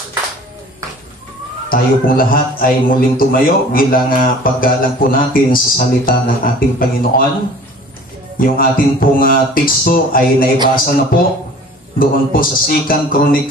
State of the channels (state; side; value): normal; both; correlation 0.46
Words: Tayo pong lahat ay muling tumayo bilang paggalang po natin sa salita ng ating Panginoon. Yung ating pong teksto ay naibasa na po doon po sa 2